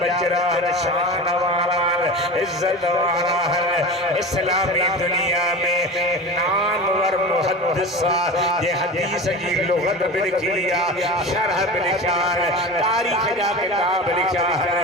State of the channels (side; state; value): both; normal; correlation 0.30